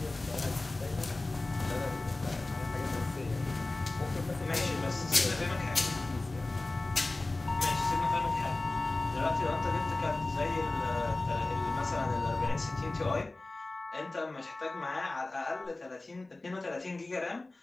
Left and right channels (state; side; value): quieter; right; 3.0 dB